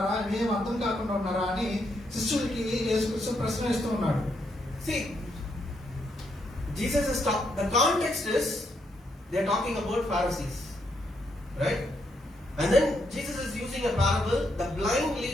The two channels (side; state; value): both; normal; correlation 0.77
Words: మేము అర్థం కాకుండా ఉన్నారా అని శిష్యులకి యేసుక్రీస్తు ప్రశ్న ఇస్తూ ఉన్నాడు. See, Jesus is the context is they are talking about Pharisees, right? And then Jesus is using a parable. The blind